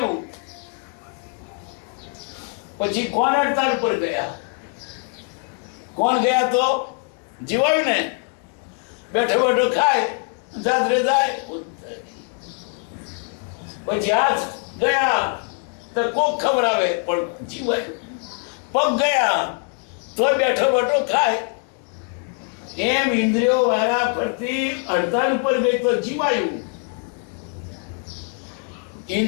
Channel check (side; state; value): right; quieter; 37.5 dB